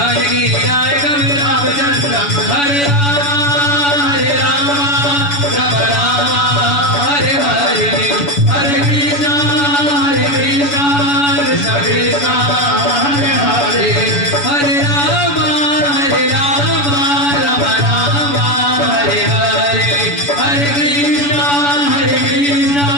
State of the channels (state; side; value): late; right; 7.0 ms